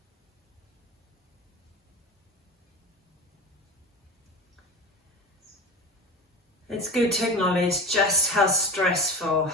It's good to acknowledge just how stressful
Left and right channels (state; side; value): normal; both; correlation 0.31